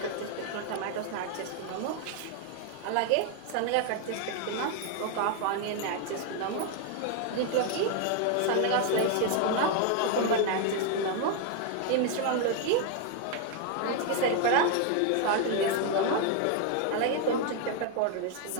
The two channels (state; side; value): different; both; correlation 0.00